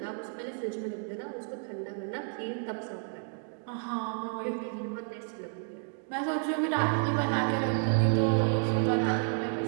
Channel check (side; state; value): left; silent; 57 dB below the other